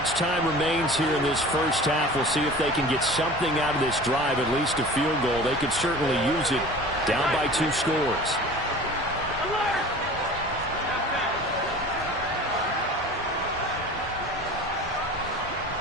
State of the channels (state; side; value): normal; both; correlation 0.40